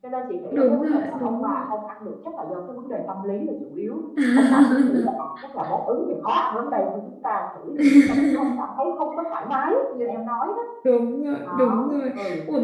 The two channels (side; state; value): both; identical; correlation 1.00